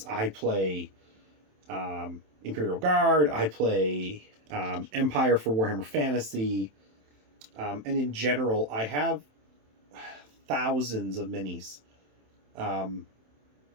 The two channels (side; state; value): left; late; 27 ms